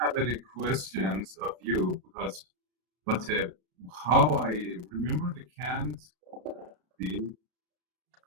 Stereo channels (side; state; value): left; late; 33 ms